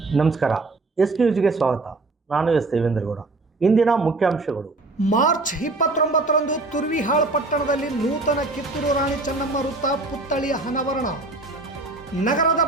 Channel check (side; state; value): left; quieter; 3.2 dB